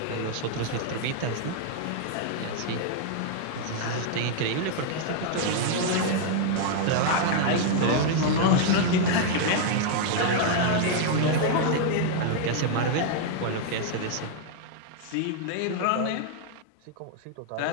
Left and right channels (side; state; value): both; different; correlation 0.00